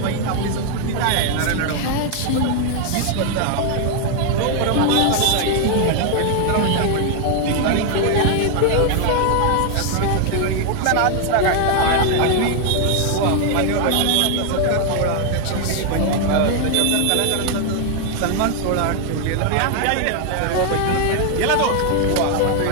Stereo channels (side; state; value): both; different; correlation 0.00